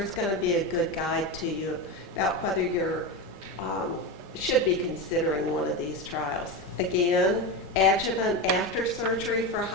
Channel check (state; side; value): normal; both; correlation 0.18